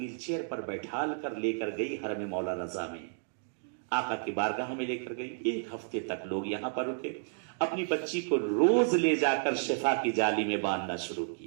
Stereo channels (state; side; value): silent; left; digital silence